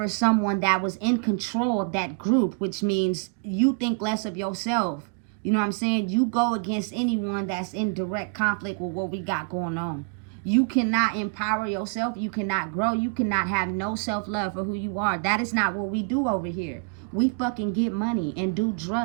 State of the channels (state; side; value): quieter; left; 38.9 dB